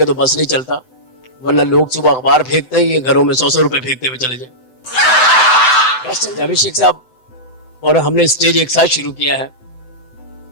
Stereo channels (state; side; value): late; right; 7.8 ms